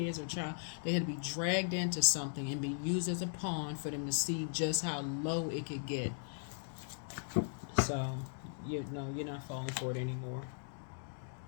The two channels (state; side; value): silent; right; digital silence